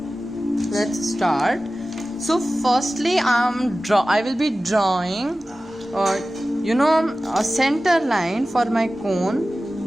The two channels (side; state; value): both; normal; correlation 0.96